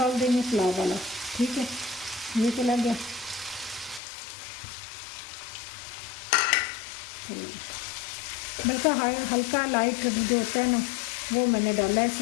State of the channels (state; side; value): drops out; right; at 4.0 s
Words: देंगे, पुलाव वाला। ठीक है, ये चला गया। तो बल्कि हल्का लाइट जो होता है ना वो मैंने डाला है